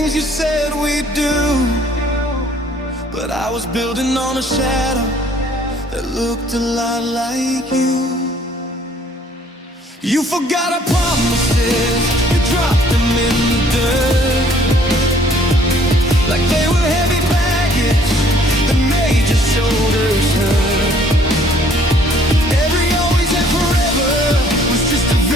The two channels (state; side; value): normal; both; correlation 0.59